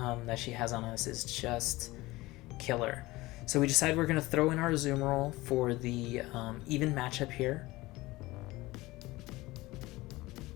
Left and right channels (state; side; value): quieter; right; 19.8 dB